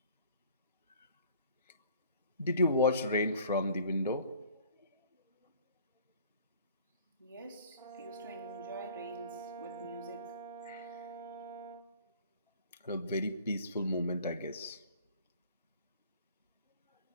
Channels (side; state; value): both; inverted; correlation -0.50